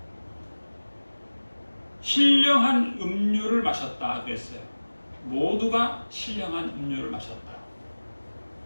신령한 음료를 마셨다 그랬어요. 모두가 신령한 음료를 마셨다.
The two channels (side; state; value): both; inverted; correlation -1.00